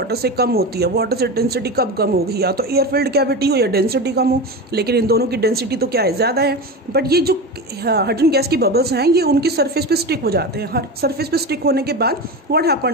से कम होती है, वाटर से डेंसिटी कब कम होगी? या तो एयर फिल्ड कैविटी हो या डेंसिटी कम हो, लेकिन इन दोनों की डेंसिटी तो क्या है? ज़्यादा है. बट ये जो हाइड्रोजन गैस की बबल्स हैं ये उनकी सरफेस पे स्टिक हो जाते हैं. हर सरफेस पे स्टिक होने के बाद what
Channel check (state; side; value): normal; both; correlation 0.24